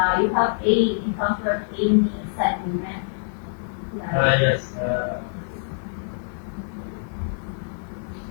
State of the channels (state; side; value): silent; right; 62 dB below the other